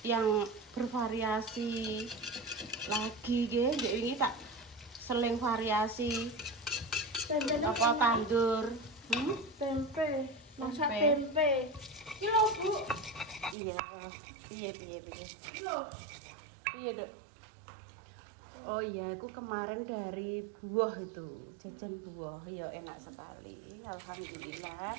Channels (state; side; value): drops out; left; at 13.6 s